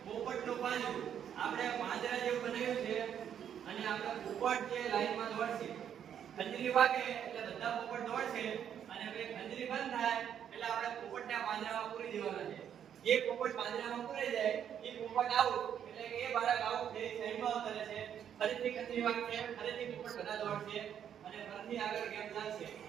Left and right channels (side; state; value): left; quieter; 9.1 dB